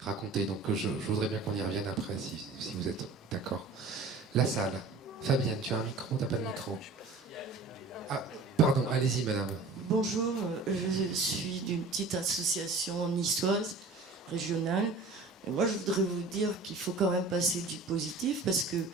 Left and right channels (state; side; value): quieter; left; 3.7 dB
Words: raconté. Donc je voudrais bien qu'on y revienne après, si vous êtes d'accord. La salle. Fabienne, tu as un micro? T'as pas de micro? Ah, pardon, allez-y madame. Bonjour, je suis d'une petite association niçoise, régionale. Et moi, je voudrais vous dire qu'il faut quand même passer du positif, parce que